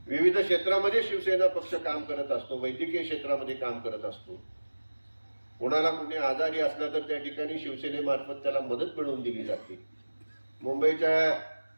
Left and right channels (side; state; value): both; inverted; correlation -1.00